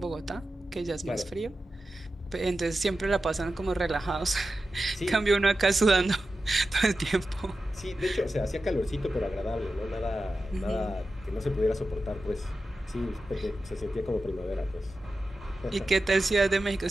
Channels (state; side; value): normal; both; correlation 0.92